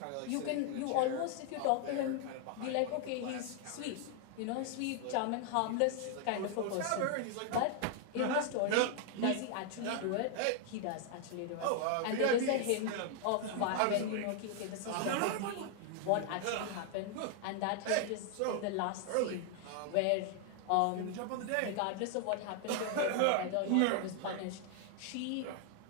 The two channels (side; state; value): both; different; correlation 0.00